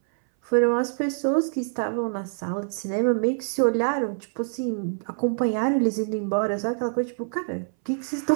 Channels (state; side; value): silent; left; 60 dB below the other